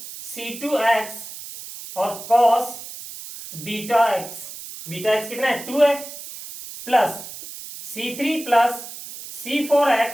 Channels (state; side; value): noise; right; hiss, 12 dB below the sound